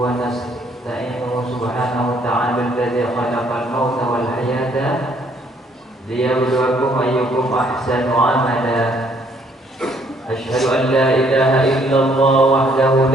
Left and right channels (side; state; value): both; normal; correlation 0.66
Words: ونستعينه سبحانه وتعالى الذي خلق الموت والحياة ليبلوكم أيكم أحسن عملا أشهد أن لا إله إلا الله وحده